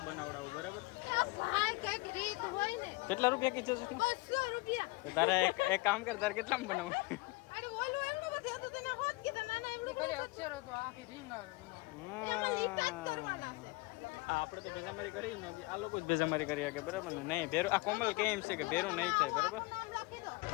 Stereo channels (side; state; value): right; quieter; 24.2 dB